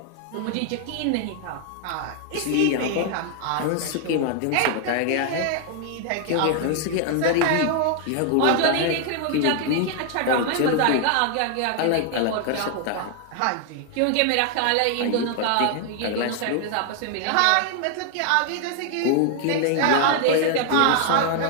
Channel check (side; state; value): both; different; correlation 0.00